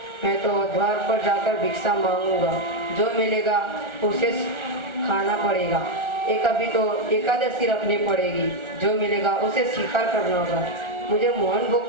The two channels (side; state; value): left; late; 1.4 ms